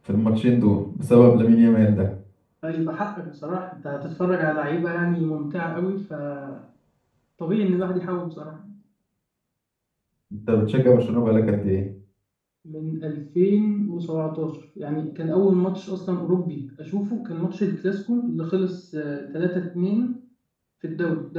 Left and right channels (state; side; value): identical; both; correlation 1.00